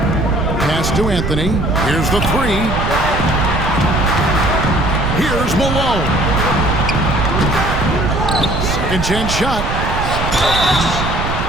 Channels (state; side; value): noise; right; rumble, 4 dB below the sound